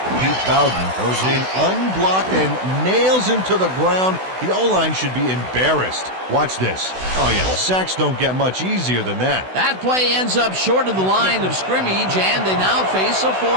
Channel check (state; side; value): late; left; 16 ms